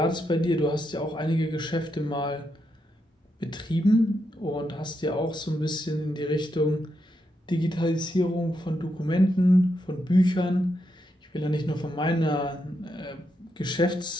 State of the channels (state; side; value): normal; both; correlation 0.82